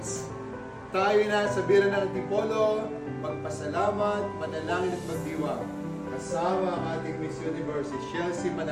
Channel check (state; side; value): identical; both; correlation 1.00